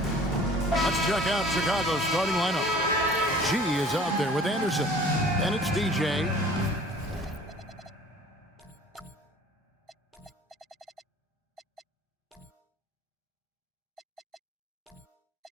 Let's check out Chicago's starting lineup. G is out there with Anderson. Then it's DJ.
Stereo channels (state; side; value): normal; both; correlation 0.49